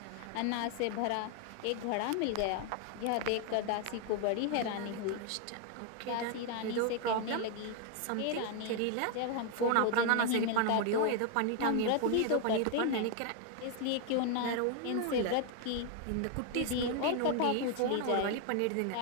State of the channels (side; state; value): both; different; correlation 0.00